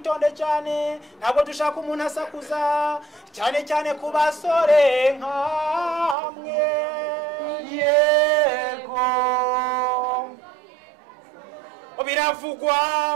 cyane ntabwo dushaka umuntu asakuza cyane cyane ku basore nkamwe yego biravugwa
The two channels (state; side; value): drops out; left; at 6.2 s